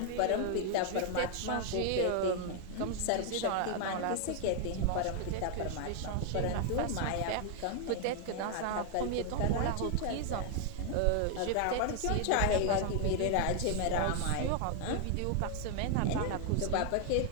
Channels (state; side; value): different; both; correlation 0.00